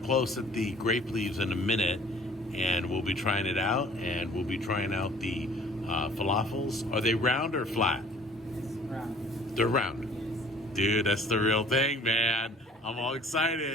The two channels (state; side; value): normal; both; correlation 0.52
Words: close at the grape leaves in a minute, and we'll be trying it out, and we'll be trying out the falafels. Are they round or flat? It's round. They're round. Yes. Dude, that's the real thing, man. I'm all